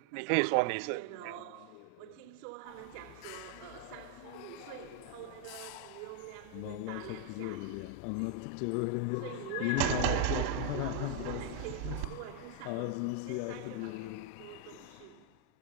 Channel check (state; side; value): different; both; correlation 0.01